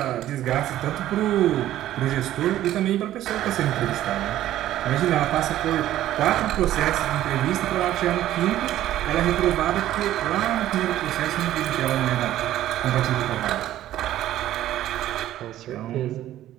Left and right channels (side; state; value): left; quieter; 13.3 dB